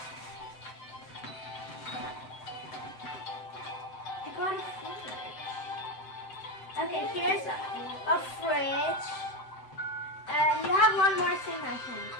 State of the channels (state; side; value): late; right; 7.8 ms